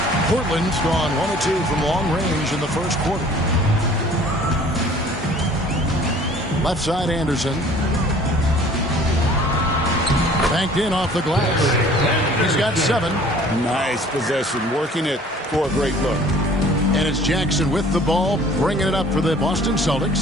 Portland's gone 1 of 2 from long range in the first quarter. Left side, Anderson. Banked in off the glass. He's got 7. Nice possession, working it for a great look. And it's Jackson with the ball, bringing it up for the Boston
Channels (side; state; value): both; normal; correlation 0.51